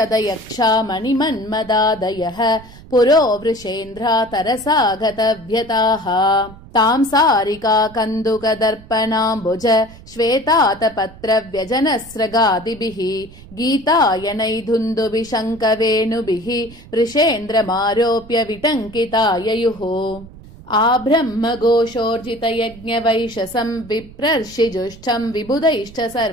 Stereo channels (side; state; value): right; noise; rumble, 20 dB below the sound